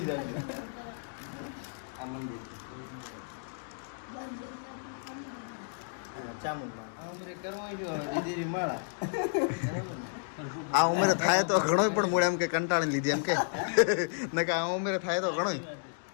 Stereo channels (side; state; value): right; silent; digital silence